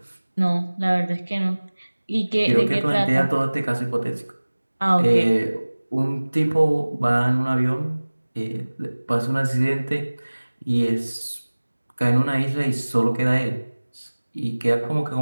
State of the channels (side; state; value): both; inverted; correlation -1.00